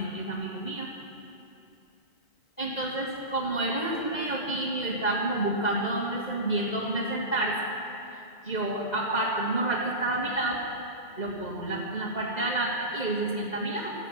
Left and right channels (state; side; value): late; right; 2.0 ms